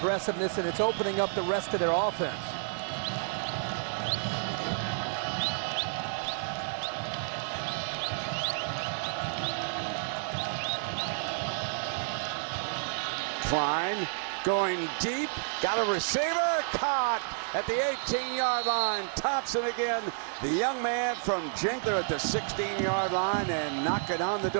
and it's opening up the rest of their offense. Klein going deep, got a receiver, caught at the 18-yard line. Thompson again, the young man from Jinkler at the 16-yard line, and knock it on the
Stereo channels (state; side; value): silent; left; digital silence